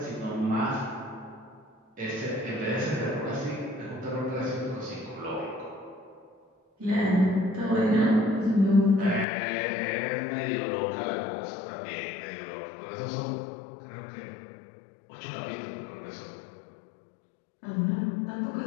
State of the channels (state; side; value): drops out; right; at 9.2 s